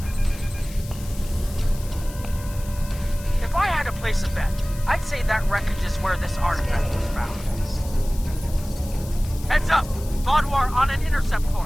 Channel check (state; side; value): noise; left; hiss, 17 dB below the sound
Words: If I had to place a bet, I'd say that wreckage is where this artifact was found. Heads up! Vaadwaur on an intercept